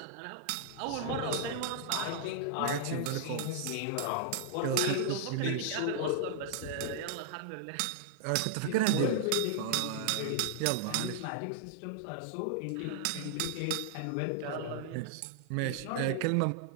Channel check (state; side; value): different; both; correlation -0.01